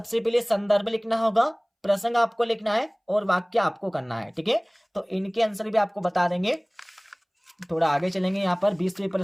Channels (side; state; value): both; identical; correlation 1.00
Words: पहले संदर्भ लिखना होगा, प्रसंग आपको लिखना है और वाक्य आपको करना है। ठीक है, तो इनके आंसर भी आपको बता देंगे। थोड़ा आगे चलेंगे यहाँ पर 20वें